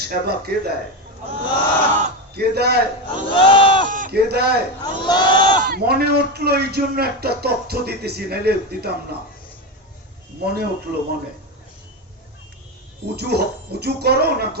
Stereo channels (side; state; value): both; normal; correlation 0.15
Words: সেবা কে দেয়? কে দেয়? কে দেয়? মনে উঠলো, এই জন্য একটা তথ্য দিতেছি, নাইলে দিতাম না। মনে উঠলো, মনে। উজু করো না